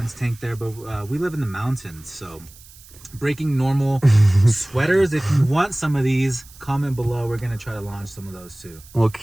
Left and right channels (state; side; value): noise; right; hiss, 22 dB below the sound